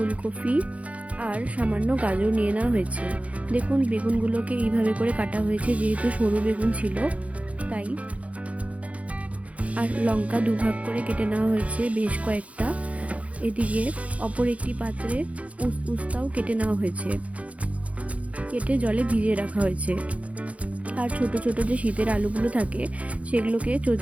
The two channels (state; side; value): late; left; 0.065 ms